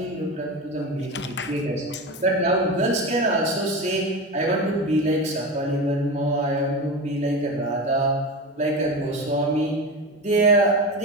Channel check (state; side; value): normal; both; correlation 0.24